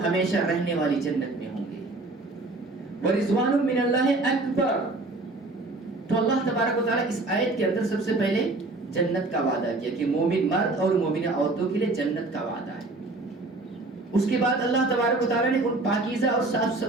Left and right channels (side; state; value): left; quieter; 3.1 dB